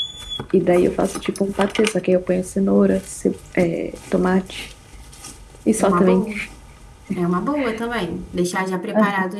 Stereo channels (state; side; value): identical; both; correlation 1.00